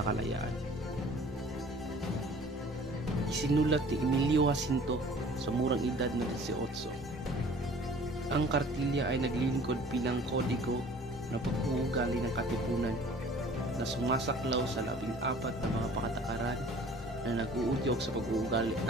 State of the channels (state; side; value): normal; both; correlation 0.49